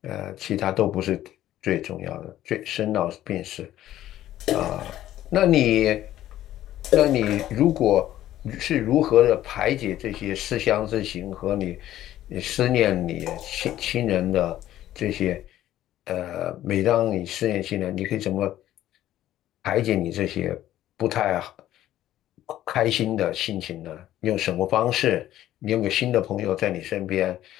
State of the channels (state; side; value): quieter; right; 13.2 dB